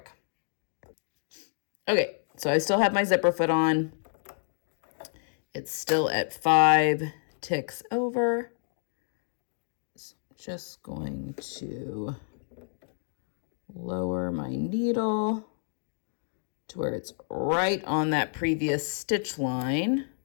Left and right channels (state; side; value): silent; right; digital silence